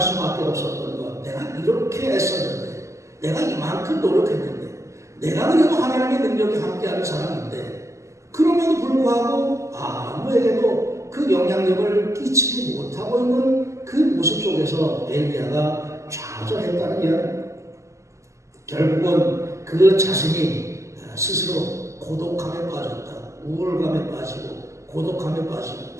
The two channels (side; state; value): left; late; 0.14 ms